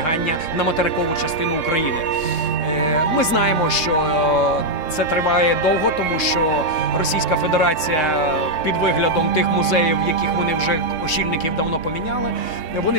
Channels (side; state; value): right; late; 3.7 ms